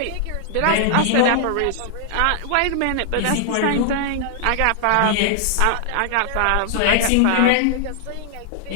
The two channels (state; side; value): different; both; correlation 0.00